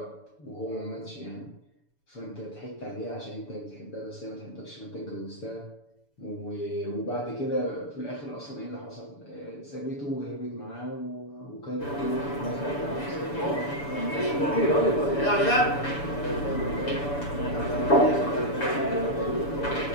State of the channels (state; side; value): late; right; 7.0 ms